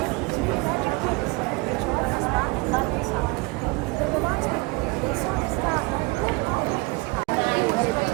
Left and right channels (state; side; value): quieter; left; 26.0 dB